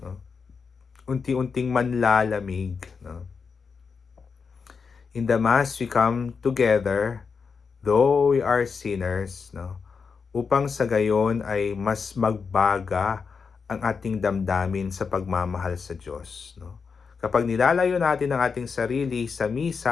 no? Unti-unting manlalamig, no? In the Mass, we come together, though we are sinners, no, upang sa gayon ay mas magbaga ang ating damdamin sa pagmamahal sa Diyos. No? Kapag nilalayo natin ang ating sarili sa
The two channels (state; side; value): quieter; right; 5.5 dB